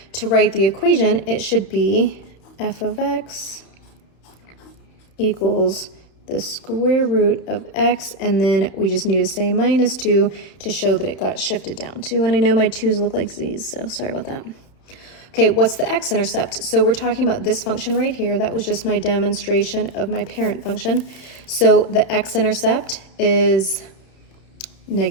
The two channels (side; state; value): right; late; 31 ms